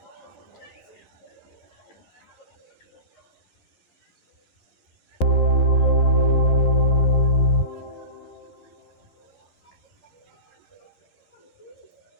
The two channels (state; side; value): late; right; 11 ms